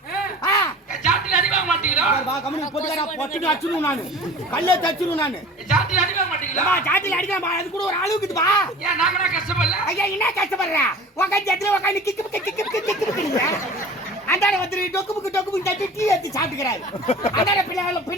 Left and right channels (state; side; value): normal; both; correlation 0.41